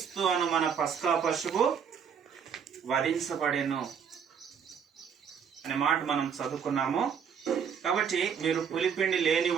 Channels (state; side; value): quieter; left; 7.2 dB